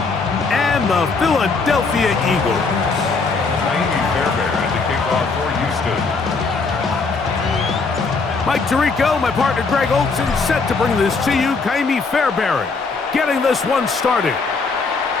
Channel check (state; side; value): quieter; right; 4.3 dB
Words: and the Philadelphia Eagles. Ka'imi Fairbairn to kick off for Houston. Mike Tirico, my partner Greg Olson, set to bring this to you. Ka'imi Fairbairn getting this one started.